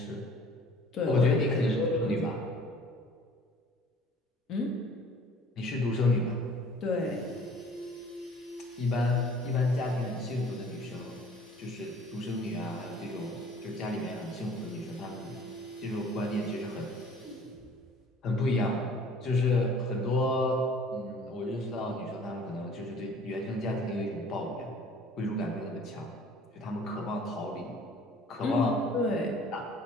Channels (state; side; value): normal; both; correlation 0.51